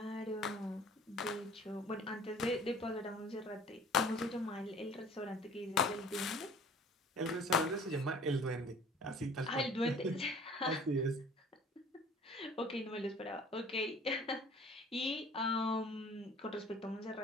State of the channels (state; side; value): normal; both; correlation 0.49